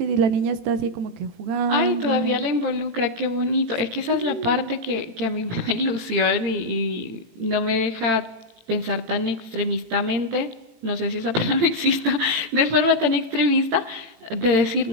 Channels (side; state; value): left; late; 18 ms